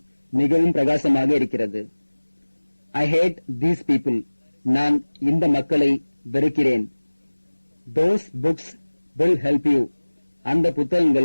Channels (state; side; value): inverted; both; correlation -1.00